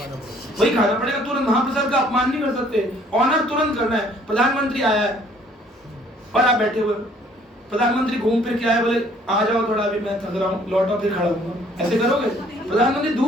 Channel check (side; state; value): both; normal; correlation 0.60